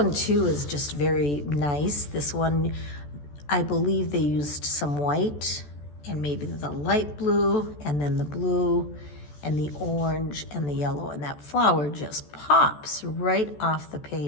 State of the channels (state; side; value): late; right; 14 ms